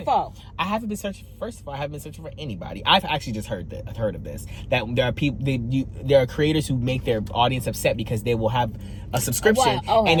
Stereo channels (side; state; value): both; identical; correlation 1.00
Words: for? I haven't been searching. First of all, I haven't been searching for anybody. I've actually just heard of this. That there are people. There are creators who make their audience upset because they will have a subscription and